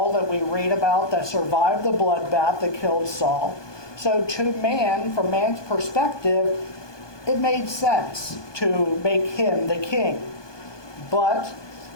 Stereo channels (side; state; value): right; late; 1.2 ms